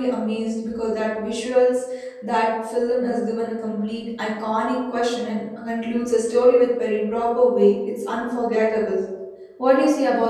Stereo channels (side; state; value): both; identical; correlation 1.00